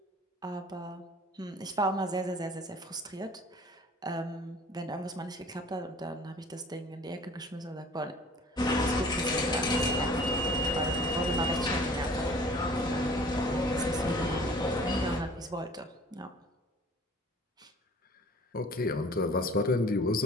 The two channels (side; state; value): both; normal; correlation 0.49